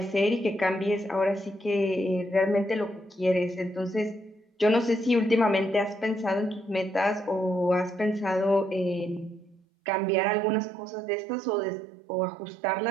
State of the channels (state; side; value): drops out; left; at 9.6 s